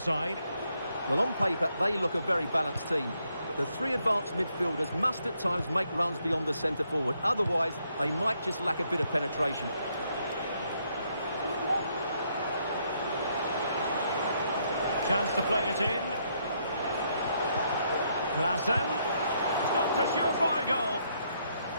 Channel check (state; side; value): inverted; both; correlation -0.74